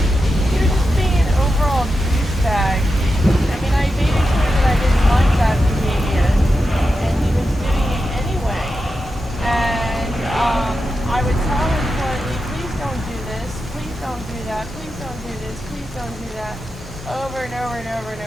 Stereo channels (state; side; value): normal; both; correlation 0.89